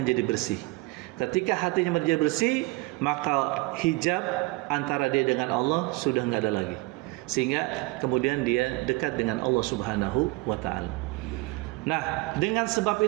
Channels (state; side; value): quieter; left; 23.4 dB